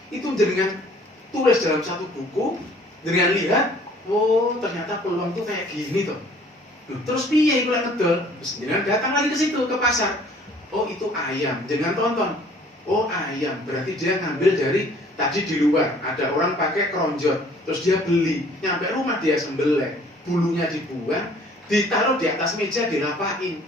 Itu dengan tulis dalam satu buku, dengan lihat, oh, ternyata peluang itu kayak gini toh. Terus piye iku lek ngedol? Terus jenengan datang lagi ke situ ke pasar. Oh, itu ayam. Jangan tonton. Oh, ayam. Berarti dia ngambil dari tadi di luar ada orang pakai keronjot, terus dia beli, nyampe rumah dia sembelih, bulunya dibuang, ditaruh di atas meja dirapain.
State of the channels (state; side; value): normal; both; correlation 0.55